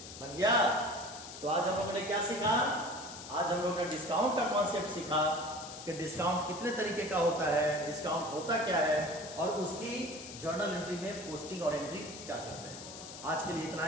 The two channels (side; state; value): left; noise; hiss, 12 dB below the sound